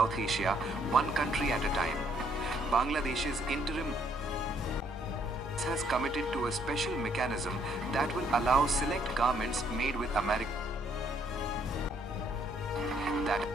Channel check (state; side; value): normal; both; correlation 0.68